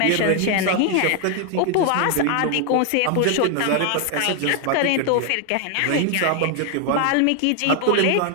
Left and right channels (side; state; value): both; different; correlation 0.00